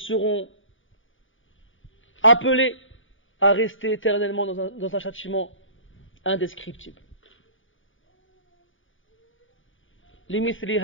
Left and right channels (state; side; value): late; right; 0.57 ms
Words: appelés à rester éternellement dans un châtiment indescriptible. لمثل